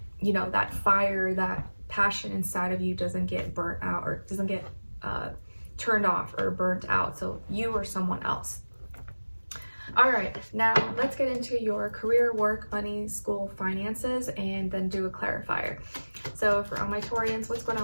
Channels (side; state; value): both; inverted; correlation -1.00